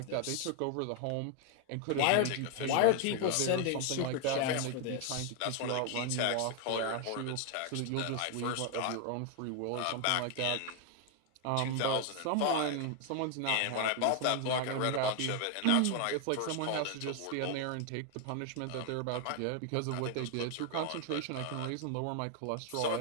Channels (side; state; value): both; different; correlation 0.01